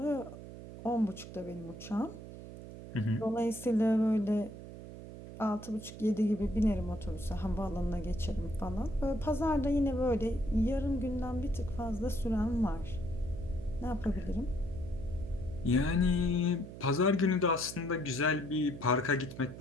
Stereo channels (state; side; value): noise; right; hum, 13 dB below the sound